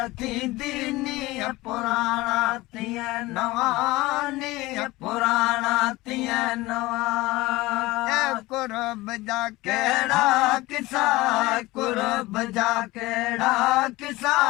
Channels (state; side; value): quieter; right; 19.9 dB